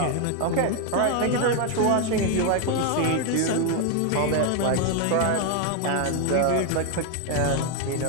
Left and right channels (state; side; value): different; both; correlation 0.01